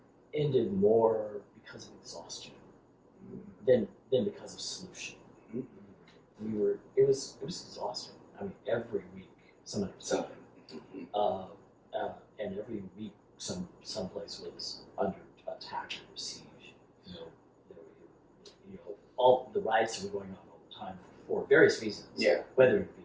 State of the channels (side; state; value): both; identical; correlation 1.00